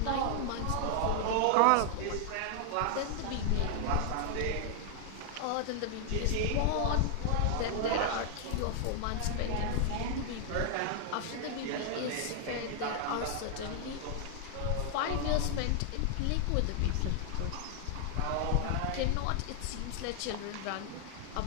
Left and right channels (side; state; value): both; different; correlation 0.00